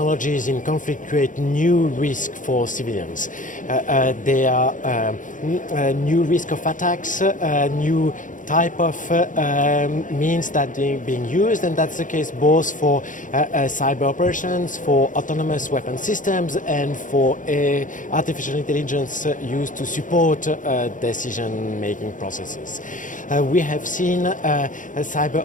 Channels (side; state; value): right; late; 0.38 ms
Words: in conflict create new risk for civilians. There are new risk of attacks, new type of means that are being used, and that's the case both for cyber operations, for autonomous weapon systems, and for artificial intelligence used to support decision-making processes. We have seen